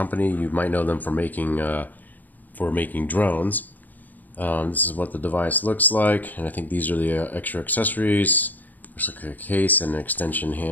You might know them for making drones. This is what the device looks like, and I think these are the extra accessories. Looks like a case and an extension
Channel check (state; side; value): late; right; 0.085 ms